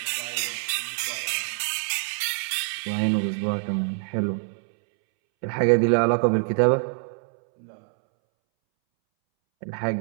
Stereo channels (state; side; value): silent; left; 62 dB below the other